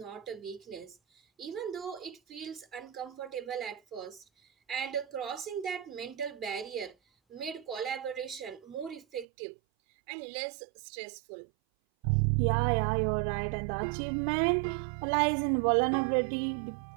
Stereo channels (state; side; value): drops out; left; at 9.2 s